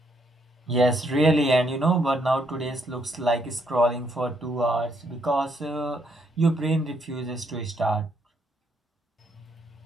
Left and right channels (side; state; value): both; normal; correlation 0.73